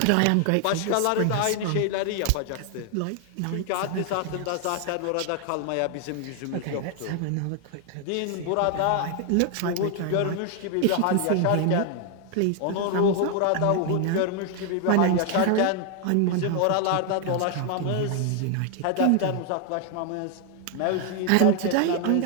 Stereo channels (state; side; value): different; both; correlation 0.00